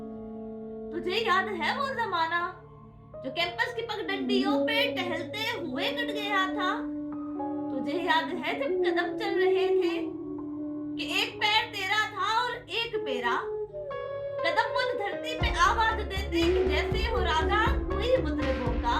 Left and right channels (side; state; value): both; identical; correlation 1.00